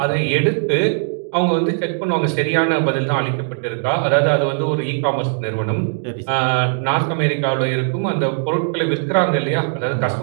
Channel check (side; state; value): left; silent; digital silence